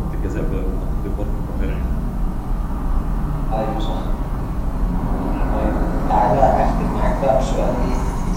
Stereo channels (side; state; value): both; identical; correlation 1.00